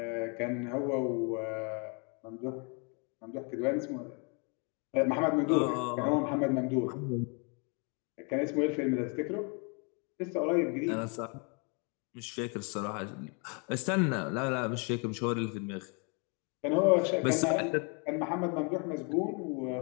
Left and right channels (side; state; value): right; quieter; 35.6 dB